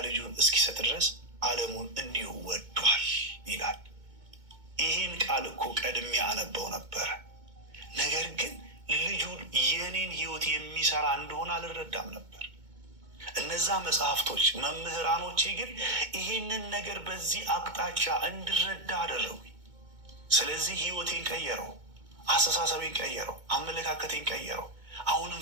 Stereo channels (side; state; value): left; late; 2.2 ms